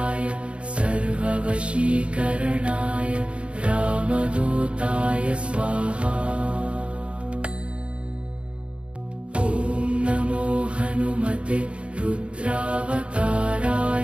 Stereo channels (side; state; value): left; late; 0.059 ms